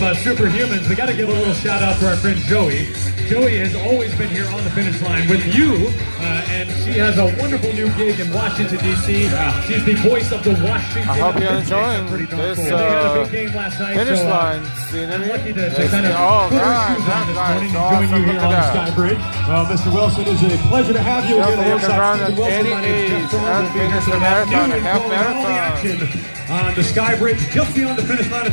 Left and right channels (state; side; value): inverted; both; correlation -1.00